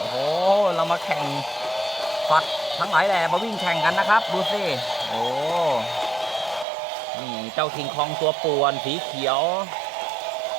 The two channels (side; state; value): left; drops out; at 6.7 s